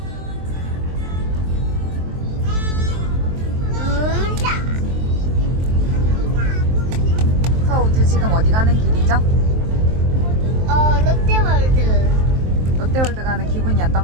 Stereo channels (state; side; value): late; left; 23 ms